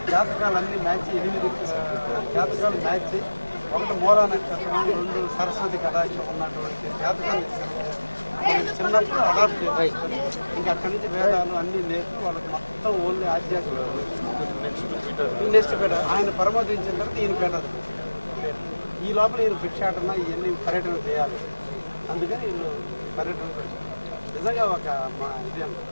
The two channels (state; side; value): inverted; both; correlation -1.00